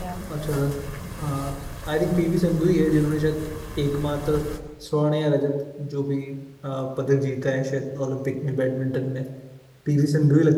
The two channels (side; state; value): both; identical; correlation 1.00